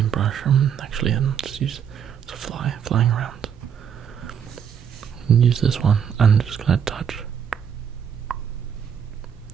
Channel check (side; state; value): left; quieter; 7.9 dB